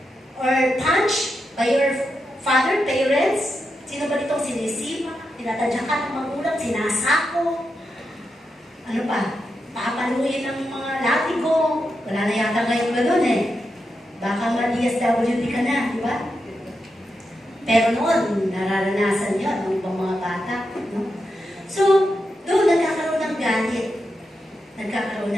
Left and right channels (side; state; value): both; normal; correlation 0.87